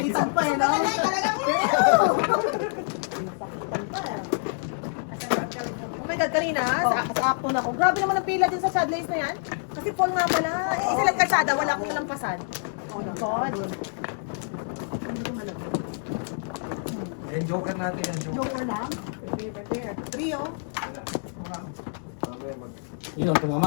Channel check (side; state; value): right; silent; digital silence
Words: pa eh, no? Oh my God, kanina, sa acton ako. Grabe naman ang pila din sa sidelines na yan. Kasi full nga pala. Isa lang kalsada, wala akong lampasan. Oh my God. Yan, joker natin yan, joker. Joker lang. Prepare. Trio. Wala. Mamaya mag... Yun, tumama